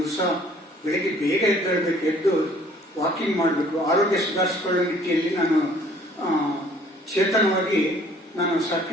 ಬೆಳಿಗ್ಗೆ ಬೇಗ ಎದ್ದೇಳಬೇಕು, ಎದ್ದು ವಾಕಿಂಗ್ ಮಾಡಬೇಕು, ಆರೋಗ್ಯ ಸುಧಾರಿಸಿಕೊಳ್ಳೋ ನಿಟ್ಟಿಯಲ್ಲಿ ನಾನು ಚೇತನವಾಗಿ ನಾನು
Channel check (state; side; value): normal; both; correlation 0.57